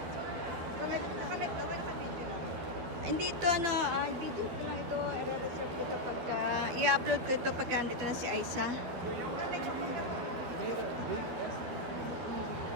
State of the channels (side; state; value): left; late; 12 ms